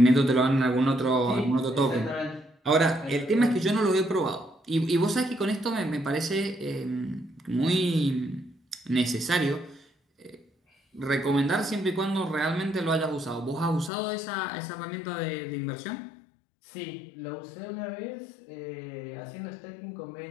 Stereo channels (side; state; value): right; drops out; at 13.9 s